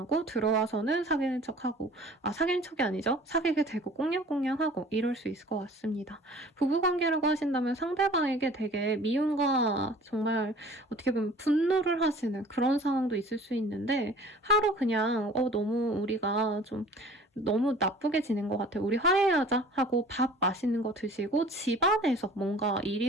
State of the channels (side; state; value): both; normal; correlation 0.48